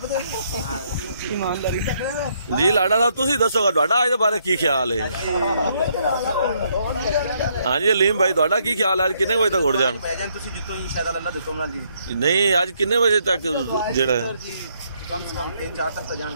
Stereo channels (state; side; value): inverted; both; correlation -0.72